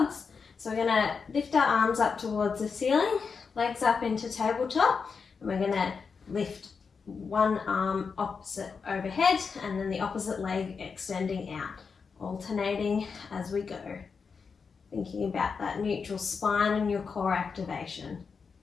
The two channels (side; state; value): right; quieter; 5.5 dB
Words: So we're going to lift our arms up towards the ceiling, legs up into tabletop, and we're going to lift one arm opposite overhead and then the opposite leg extending out, alternating as we go. Thinking about that neutral spine and your core activation.